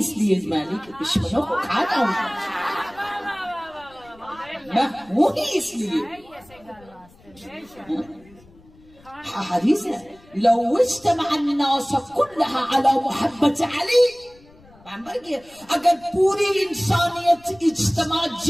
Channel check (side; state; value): left; noise; rumble, 27 dB below the sound